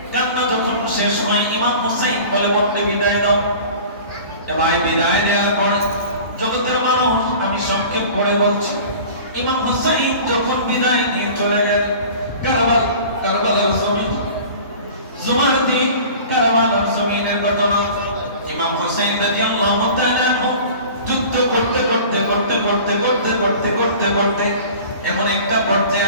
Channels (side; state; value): both; inverted; correlation -0.42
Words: কান্না যখন শেষ হয় ইমাম হুসাইন বলে বলতে বিদায় দাও। এবার বিদায় দেওয়ার পরে জগতের মানুষ, আমি সংক্ষেপ করে বলছি, ইমাম হুসাইন যখন বিদায় নিয়ে চলে গেলেন কারবালার জমিন, জুমার দিন কারবালার জমিনের ঘটনা। ইমাম হুসাইন রাদিয়াল্লাহু তাআলা যুদ্ধ করতে করতে করতে করতে করতে করতে করতে করতে এমন একটা পর্যায়ে